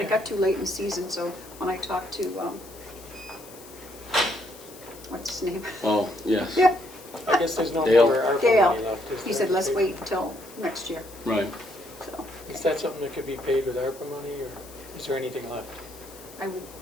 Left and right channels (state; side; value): noise; left; hiss, 19 dB below the sound